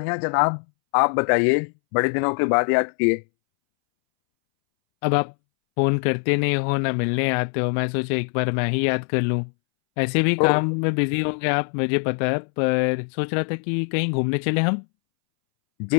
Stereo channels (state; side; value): silent; right; 63 dB below the other